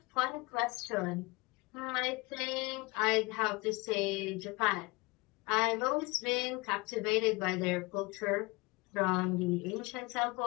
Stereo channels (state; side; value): quieter; right; 24.3 dB